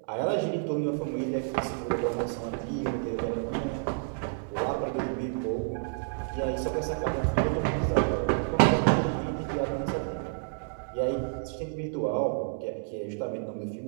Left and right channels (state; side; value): silent; left; digital silence